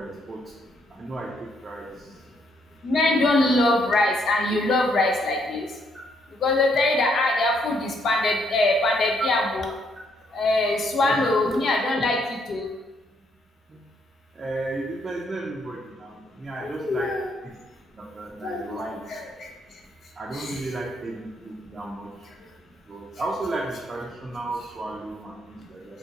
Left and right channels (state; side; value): normal; both; correlation 0.72